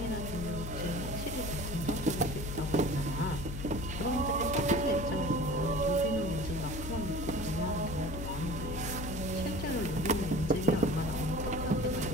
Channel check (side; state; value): left; noise; hum, 6 dB below the sound